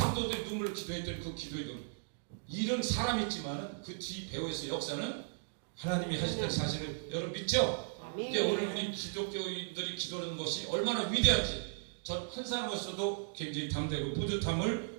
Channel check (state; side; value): silent; left; digital silence